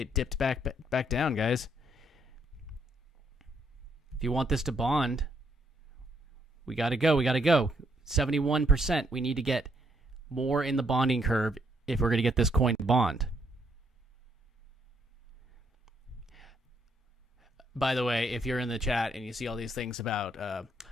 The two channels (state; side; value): normal; both; correlation 0.72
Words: dipped back down, guys. If you want this to bond, we got to go. 71%. We need to get more in the bonding curve if we're going to get this coin to bond. By the way, if you're in the chat and you see all these things about